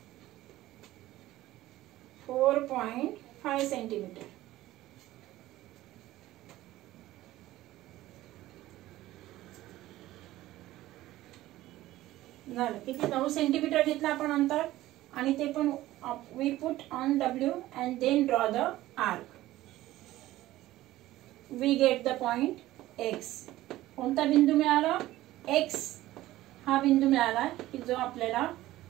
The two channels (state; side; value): quieter; left; 16.0 dB